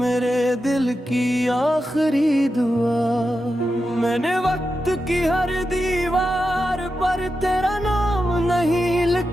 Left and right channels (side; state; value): both; normal; correlation 0.89